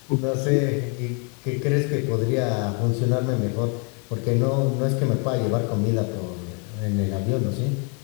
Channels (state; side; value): quieter; right; 36.7 dB